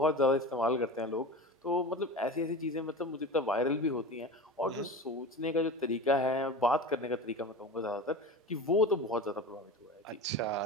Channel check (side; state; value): both; normal; correlation 0.30